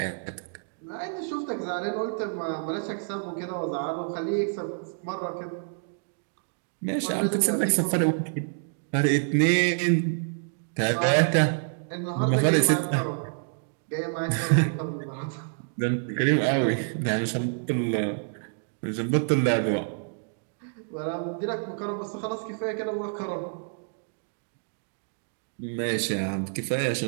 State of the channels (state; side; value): silent; left; digital silence